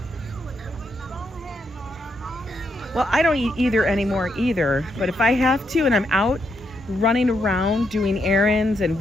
Well, I don't eat either anymore either, but if I have to and I'm out running around doing errands and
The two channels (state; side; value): normal; both; correlation 0.79